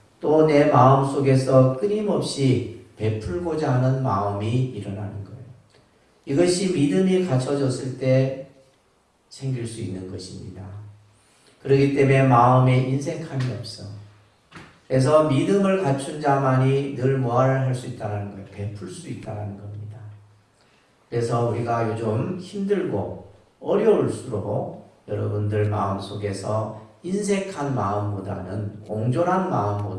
또 내 마음 속에서 끊임없이 베풀고자 하는 마음이 일어나는 거예요. 이것이 믿음이 갖춰졌을 때 생길 수 있는 것입니다. 그렇기 때문에 마음에 인색함이 없어. 그래서 믿음을 갖춘 자만이 늘 뭐를 할 수 있다는 거예요. 베풀 수 있다는 겁니다. 그래서 우리가 요즘 힘들고 어려울수록 여러분들 마음속에서 인색한 마음보다는, 옹졸한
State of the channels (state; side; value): identical; both; correlation 1.00